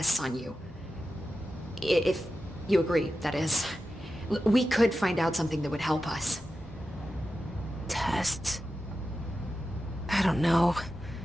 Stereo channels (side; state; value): both; normal; correlation 0.92